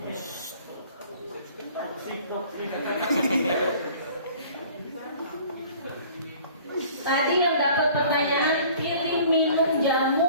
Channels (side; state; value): both; inverted; correlation -0.49